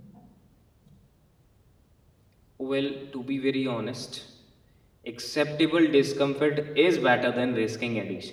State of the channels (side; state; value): both; identical; correlation 1.00